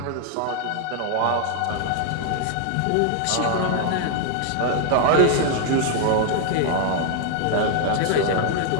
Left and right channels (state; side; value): different; both; correlation 0.00